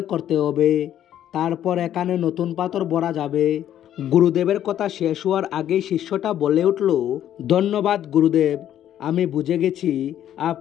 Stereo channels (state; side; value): quieter; right; 11.1 dB